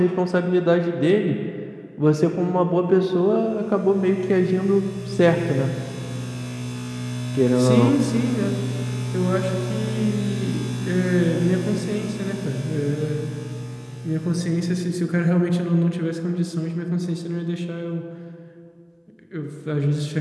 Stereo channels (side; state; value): both; identical; correlation 1.00